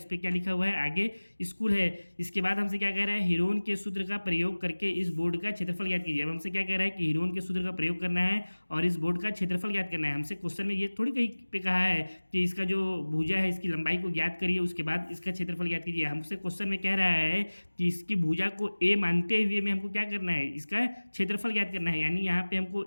पर क्या लिखा हुआ है, आगे स्कूल है। इसके बाद हमसे क्या कह रहा है, हीरोन के सूत्र का प्रयोग करके इस बोर्ड का क्षेत्रफल ज्ञात कीजिए। अब हमसे क्या कह रहा है कि हीरोन के सूत्र का प्रयोग करना है और इस बोर्ड का क्षेत्रफल ज्ञात करना है। हमसे क्वेश्चन में ये थोड़ी कहीं पे कहा है कि इसका जो भुजा है इसकी लंबाई को ज्ञात करिए, उसके बाद इसका क्षेत्रफल ज्ञात कीजिए। हमसे क्वेश्चन में कह रहा है कि इसकी भुजा को ए मानते हुए में हमको क्या करना है, इसका क्षेत्रफल ज्ञात करना है। यानी यहाँ पे हमको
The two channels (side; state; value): both; inverted; correlation -1.00